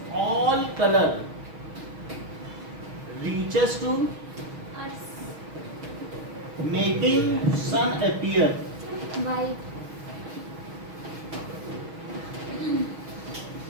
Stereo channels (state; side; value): late; left; 6.3 ms